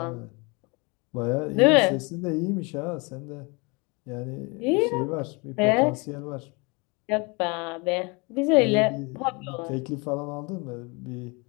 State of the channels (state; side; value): quieter; right; 29.1 dB